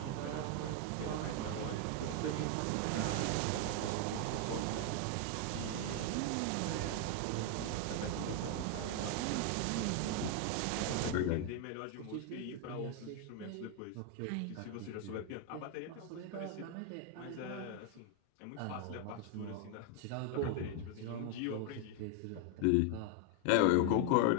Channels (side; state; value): both; different; correlation 0.00